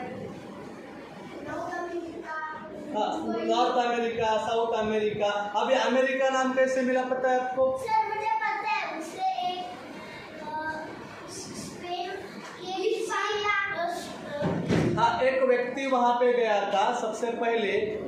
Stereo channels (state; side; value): identical; both; correlation 1.00